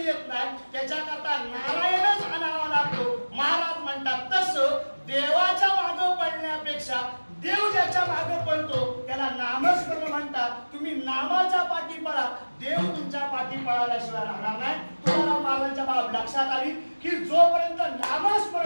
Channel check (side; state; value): both; inverted; correlation -1.00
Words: येत नाही त्याच्याकरता नारायणच आणावा लागतो. महाराज म्हणतात तसं देवाच्या मागे पडण्यापेक्षा देव ज्याच्या मागे पडतो त्याला नामस्मरण म्हणतात. तुम्ही नामाच्या पाठी पळा, देव तुमच्या पाठी पळाल्याशिवाय राहणार नाही. तुम्हाला महाराजांच्या बाब लक्षात आली की जोपर्यंत